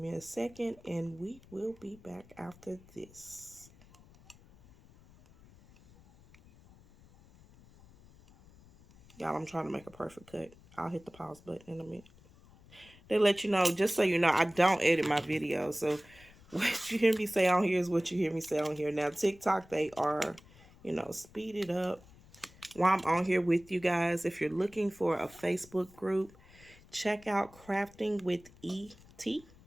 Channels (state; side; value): noise; left; rumble, 24 dB below the sound